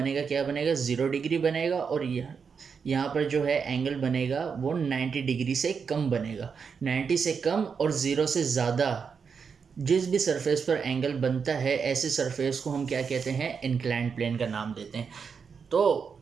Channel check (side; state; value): left; quieter; 6.1 dB